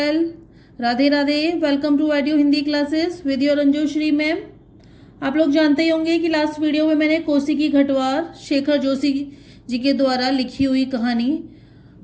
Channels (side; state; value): both; identical; correlation 1.00